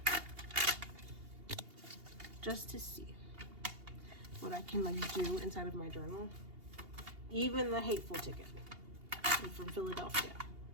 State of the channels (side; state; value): left; late; 2.8 ms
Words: just to see what I can like do inside of my journal. Even the hateful ticket from Philadelphia.